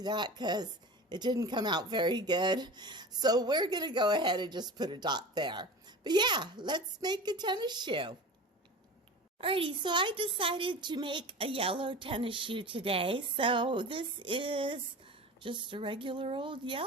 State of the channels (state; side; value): normal; both; correlation 0.33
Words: that because it didn't come out very good. So we're going to go ahead and just put a dot there. But yeah, let's make a tennis shoe. Alrighty, so I decided to make a yellow tennis shoe today. So this is just a regular old